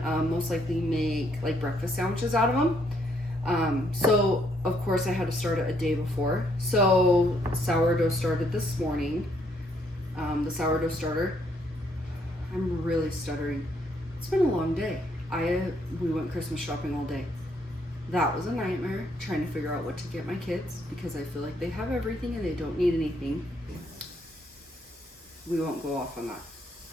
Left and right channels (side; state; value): both; normal; correlation 0.71